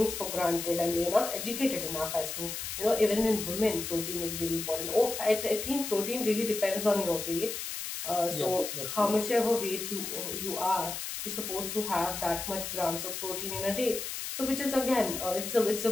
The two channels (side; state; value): left; noise; hiss, 5 dB below the sound